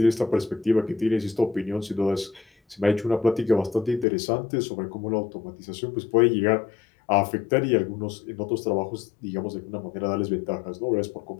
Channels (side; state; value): right; drops out; at 4.0 s